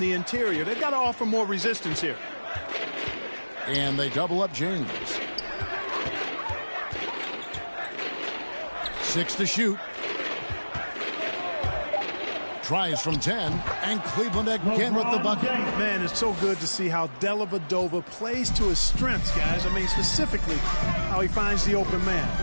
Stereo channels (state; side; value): inverted; both; correlation -1.00